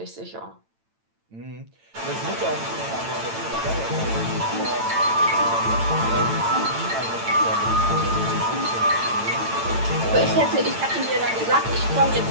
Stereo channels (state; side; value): late; left; 8.9 ms